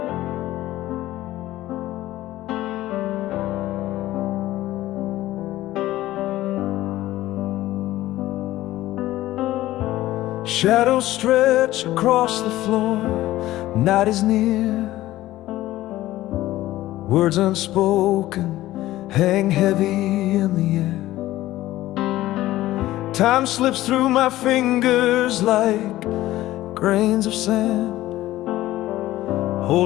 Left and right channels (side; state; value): right; quieter; 15.7 dB